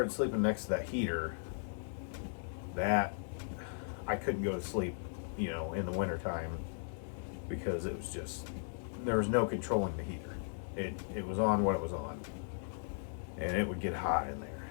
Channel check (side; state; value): right; silent; digital silence